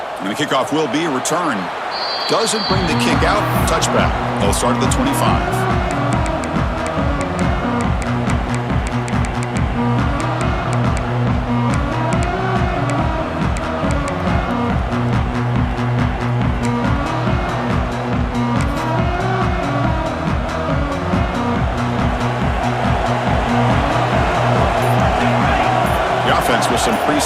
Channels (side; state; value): both; identical; correlation 1.00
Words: And the kickoff will be a return. Doesn't bring the kick out. Touchback. They'll start at the 25. With some